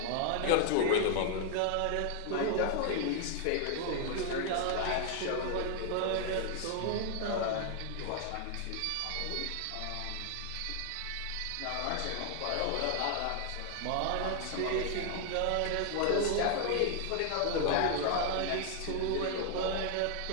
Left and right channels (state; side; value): different; both; correlation 0.00